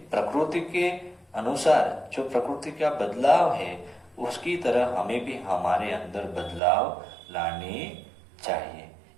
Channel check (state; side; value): drops out; left; at 6.6 s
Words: प्रकृति के अनुसार जो प्रकृति का बदलाव है उसकी तरह हमें भी हमारे अंदर बदलाव लाने चाहिए।